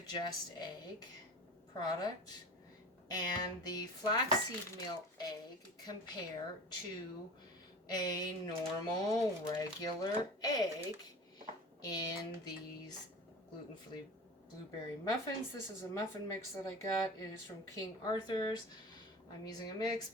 Just Egg product and the flaxseed meal egg compare to a normal regular egg in these gluten-free blueberry muffins. This is a muffin mix that I got. It is from King Arthur's. I'm using a mix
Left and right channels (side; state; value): both; normal; correlation 0.35